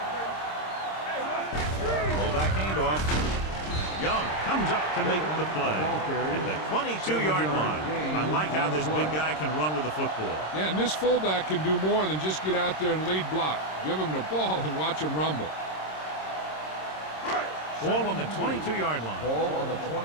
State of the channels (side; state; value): right; late; 26 ms